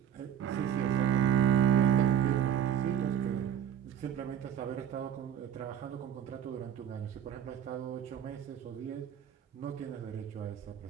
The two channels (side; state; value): left; quieter; 9.6 dB